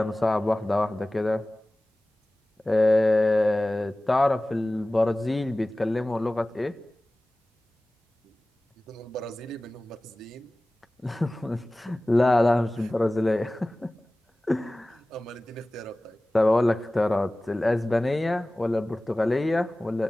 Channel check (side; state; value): both; normal; correlation 0.98